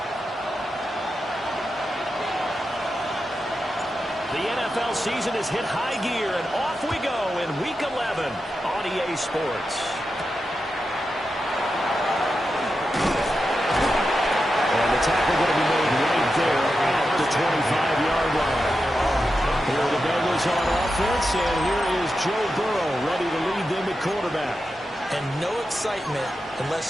The NFL season has hit high gear, and off we go in Week 11 on EA Sports. And the tackle going to be made right there at the 25-yard line. Here are the Bengals on offense, and here is Joe Burrow ready to lead them at quarterback. And no excitement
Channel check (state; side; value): normal; both; correlation 0.89